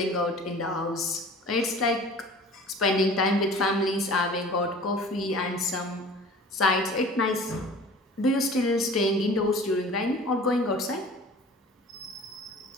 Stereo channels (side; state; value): both; normal; correlation 0.44